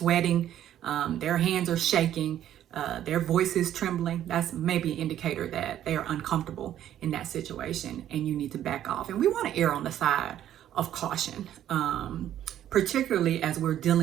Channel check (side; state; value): left; quieter; 11.4 dB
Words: their hands are shaking, their voice is trembling, that's maybe an indicator that they are uncomfortable in that situation and you need to back off. And we want to err on the side of caution, particularly as we're